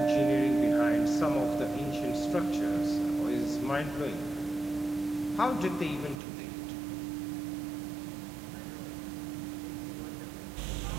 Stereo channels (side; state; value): left; drops out; at 6.2 s